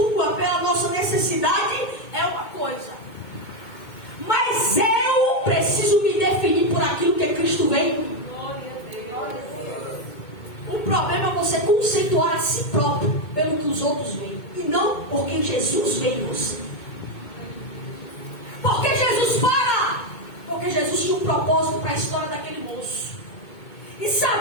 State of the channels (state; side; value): late; right; 2.2 ms